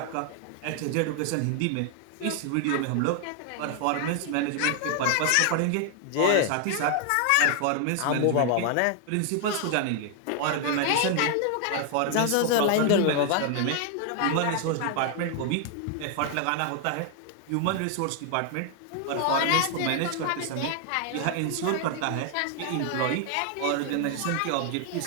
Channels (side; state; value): both; different; correlation 0.00